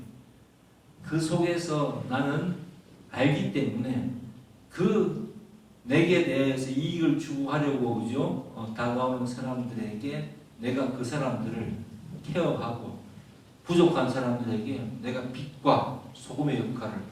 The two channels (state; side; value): identical; both; correlation 1.00